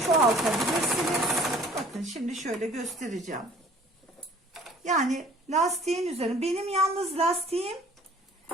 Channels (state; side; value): normal; both; correlation 0.52